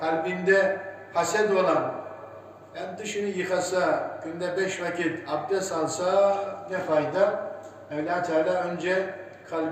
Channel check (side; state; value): both; identical; correlation 1.00